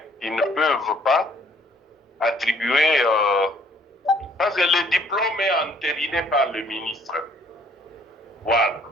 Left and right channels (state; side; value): normal; both; correlation 0.61